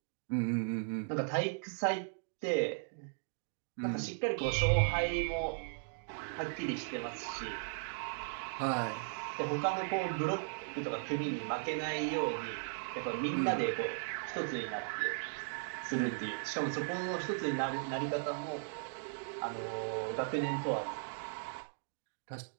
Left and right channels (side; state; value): left; silent; digital silence